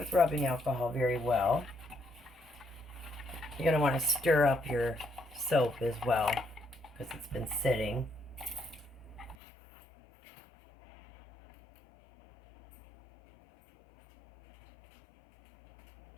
rubbing alcohol very well. You're going to want to stir up your soap as well, because it's been sitting.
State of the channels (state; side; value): drops out; right; at 9.3 s